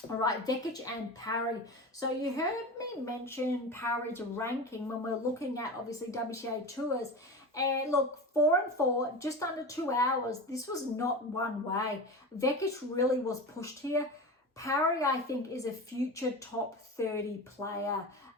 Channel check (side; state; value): both; normal; correlation 0.28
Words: All right, Vekic and Parry. So you heard me mention Parry's ranking when we're looking at, obviously, WTA tours. And look, 4-4, just under 2 hours. This was not one way. Vekic really was pushed here. Parry, I think, is a future top 30 player,